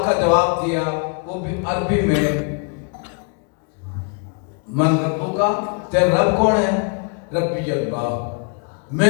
का जवाब दिया वो भी अरबी में, मन रब्बुका, तेरा रब कौन है? रब्बी अल्लाह,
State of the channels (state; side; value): quieter; right; 39.1 dB